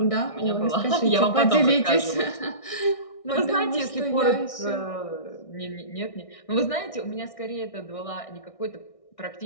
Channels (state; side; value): late; right; 1.6 ms